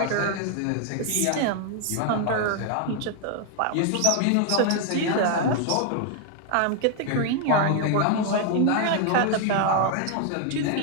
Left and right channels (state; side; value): different; both; correlation 0.00